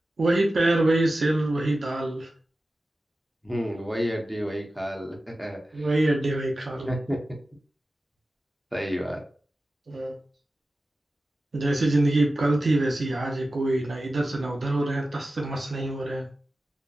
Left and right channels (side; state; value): both; normal; correlation 0.94